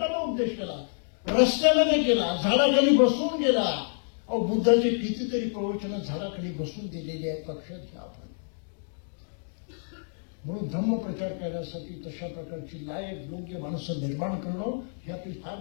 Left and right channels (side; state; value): right; silent; digital silence